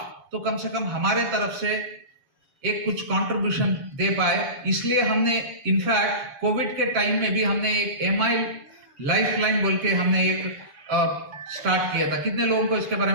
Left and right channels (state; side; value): late; left; 7.5 ms